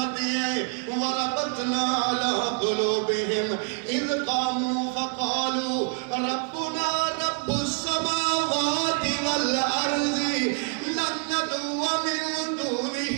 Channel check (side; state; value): left; quieter; 39.6 dB